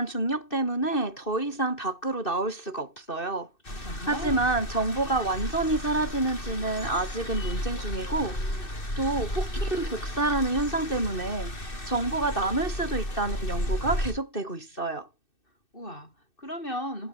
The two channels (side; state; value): right; late; 2.6 ms